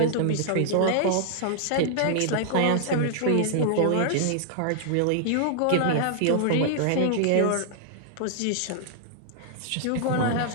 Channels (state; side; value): different; both; correlation -0.01